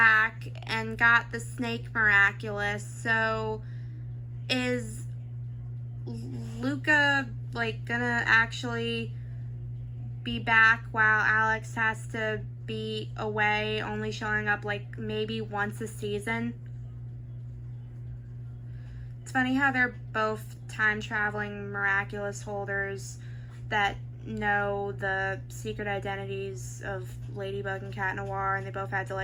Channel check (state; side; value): identical; both; correlation 1.00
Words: and got the Snake Miraculous, so is Luca like gonna actually be back while Alex has to be away, only showing up like maybe once a season? It's funny how they're both time traveling Miraculous holders that know the secret identities of Ladybug and Cat Noir, and they both had to